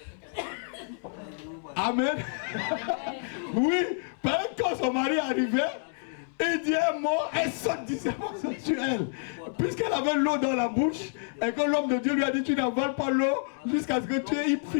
Amen. Oui, quand son mari arrivait, il dit un mot, elle saute, dit c'est sexuel. puisqu'elle avait l'eau dans la bouche, et que l'homme de Dieu lui a dit, tu n'avales pas l'eau jusqu'à ce que tu aies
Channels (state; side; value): silent; right; digital silence